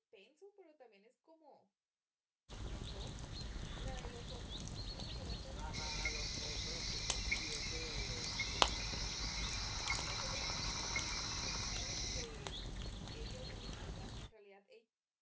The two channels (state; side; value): identical; both; correlation 1.00